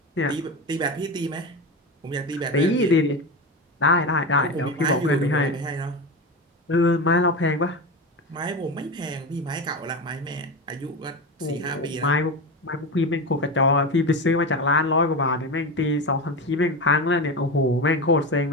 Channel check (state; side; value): normal; both; correlation 0.21